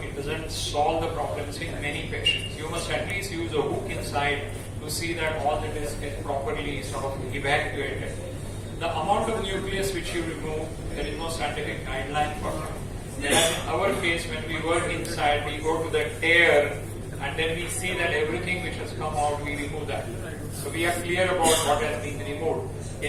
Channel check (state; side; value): identical; both; correlation 1.00